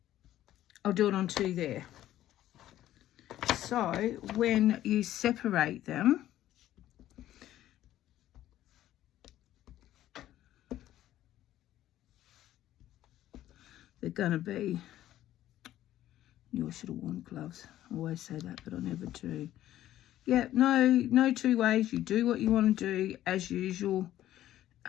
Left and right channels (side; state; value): right; quieter; 13.2 dB